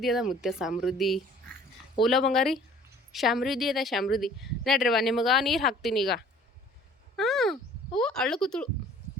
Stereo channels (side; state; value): both; normal; correlation 0.52